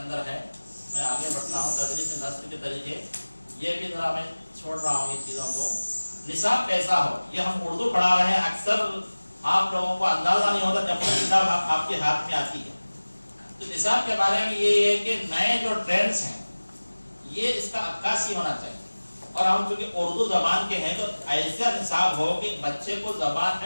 ہے. میں آگے بڑھتا ہوں. تدریس نثر کے طریقے یہ بھی ذرا میں چھوڑ رہا ہوں یہ چیزوں کو. نصاب کیسا ہو یہ ہم اردو پڑھا رہے ہیں. اکثر آپ لوگوں کو اندازہ نہیں ہوتا جب تک کتاب آپ کے ہاتھ میں آتی ہے. تو نصاب کے بارے میں یہ ہے کہ نئے جو ٹرینڈس ہیں یہ اس کا عکاسی ہونا چاہیے. اور ہم چونکہ اردو زبان کے ہیں تو ایسا نصاب ہو کہ بچے کو زبان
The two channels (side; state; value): both; inverted; correlation -1.00